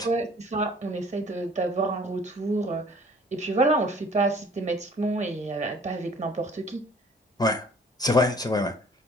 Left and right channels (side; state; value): both; normal; correlation 0.53